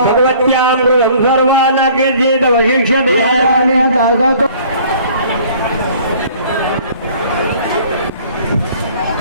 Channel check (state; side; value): inverted; both; correlation -0.53